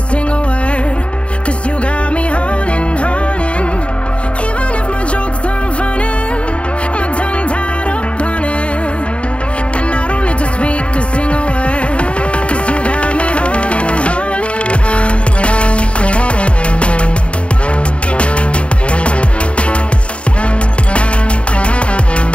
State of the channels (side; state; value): right; late; 0.060 ms